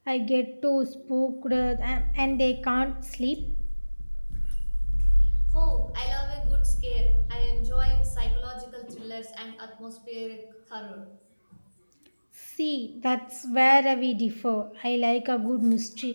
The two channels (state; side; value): inverted; both; correlation -1.00